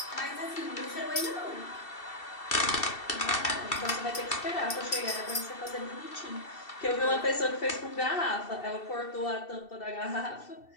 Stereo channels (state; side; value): late; right; 2.7 ms